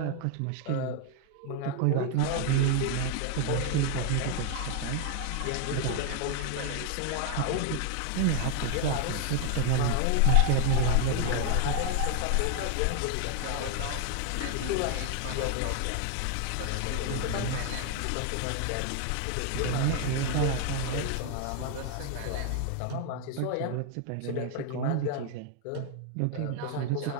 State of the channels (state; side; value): different; both; correlation 0.00